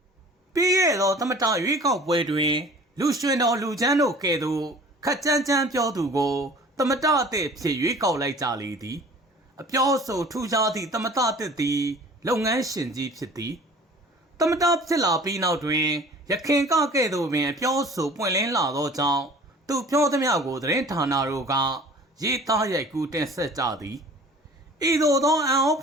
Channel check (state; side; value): normal; both; correlation 0.46